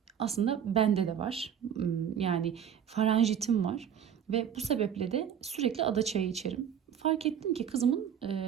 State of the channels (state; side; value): quieter; left; 8.7 dB